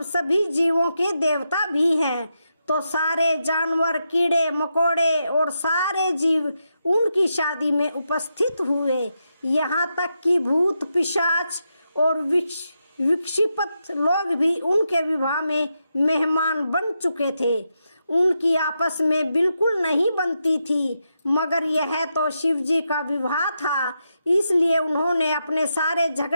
सभी जीवों के देवता भी हैं। तो सारे जानवर, कीड़े मकोड़े और सारे जीव उनकी शादी में उपस्थित हुए। यहाँ तक कि भूत, पिशाच और विक्षिप्त लोग भी उनके विवाह में मेहमान बन चुके थे। उनकी आपस में बिल्कुल नहीं बनती थी, मगर यह तो शिवजी का विवाह था, इसलिए उन्होंने अपने सारे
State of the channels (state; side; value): inverted; both; correlation -0.85